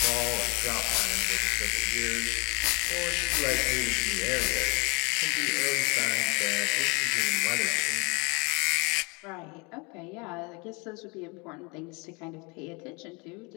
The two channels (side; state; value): right; quieter; 28.6 dB